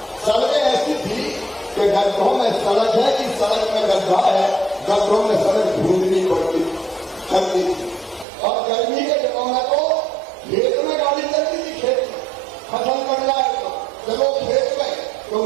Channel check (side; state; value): left; drops out; at 8.2 s